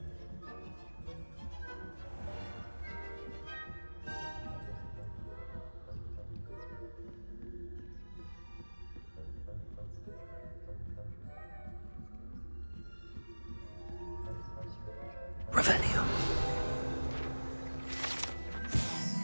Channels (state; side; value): inverted; both; correlation -1.00